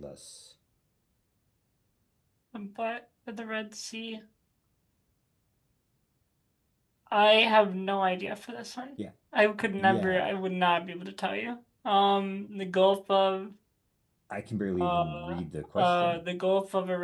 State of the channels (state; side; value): identical; both; correlation 1.00